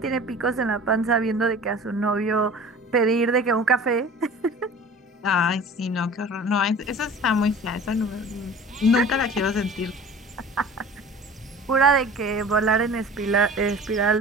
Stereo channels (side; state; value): both; normal; correlation 0.42